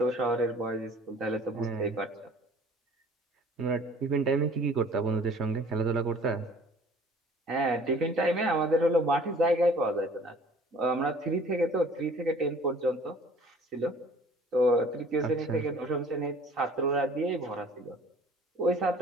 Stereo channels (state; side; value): normal; both; correlation 0.51